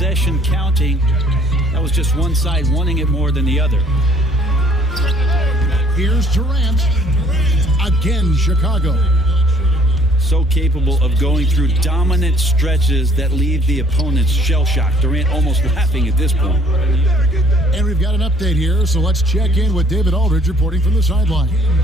counting. That was just one side wanting it more than the other. Here's Durant. Again, Chicago. So capable of going through dominant stretches that leave the opponents shell-shocked. Durant almost laughing at this point. And we've got an update here, so let's check in with David Aldridge reporting from the sideline.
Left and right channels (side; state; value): both; normal; correlation 0.60